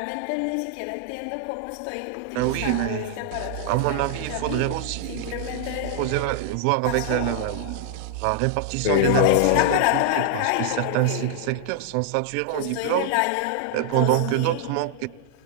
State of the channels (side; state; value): both; different; correlation -0.01